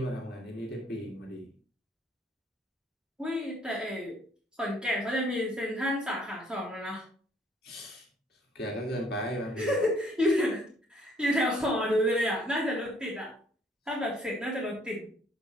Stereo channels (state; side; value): normal; both; correlation 0.62